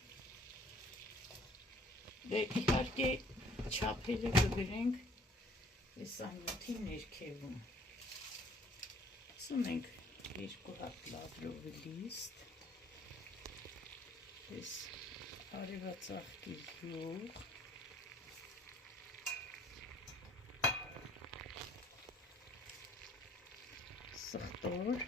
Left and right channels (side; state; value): both; normal; correlation 0.58